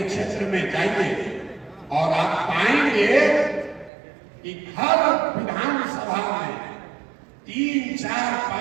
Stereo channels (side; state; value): left; drops out; at 3.9 s